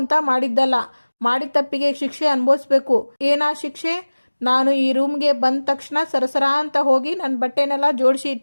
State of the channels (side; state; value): both; inverted; correlation -1.00